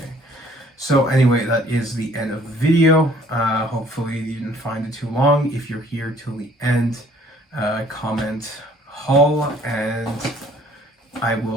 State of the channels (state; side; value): normal; both; correlation 0.57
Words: So anyway, that is the end of the video. Hopefully you didn't find it too long. If you're here till the end, comment haul, and I